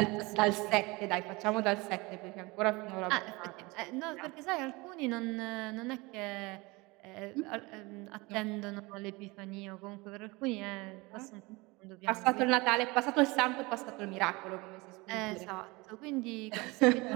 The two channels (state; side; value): quieter; left; 24.1 dB